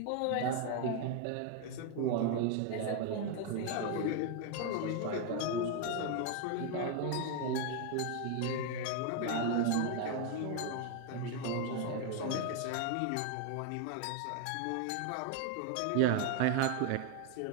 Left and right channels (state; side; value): different; both; correlation 0.01